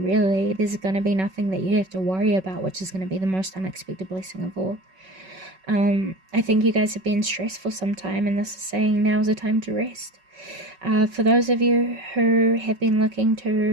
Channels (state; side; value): late; left; 5.3 ms